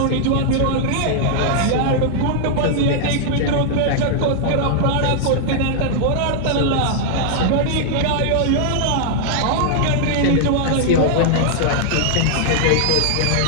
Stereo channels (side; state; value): both; different; correlation -0.01